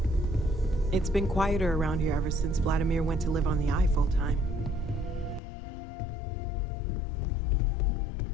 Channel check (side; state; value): right; drops out; at 5.4 s